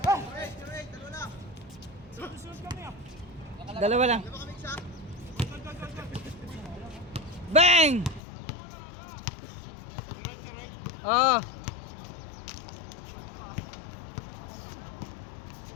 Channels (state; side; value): drops out; right; at 8.2 s